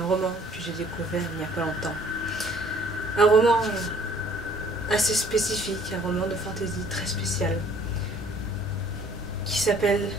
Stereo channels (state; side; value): normal; both; correlation 0.57